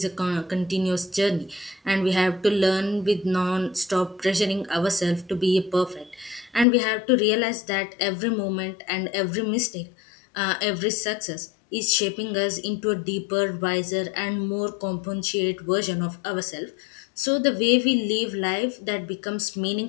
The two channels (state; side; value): drops out; right; at 6.7 s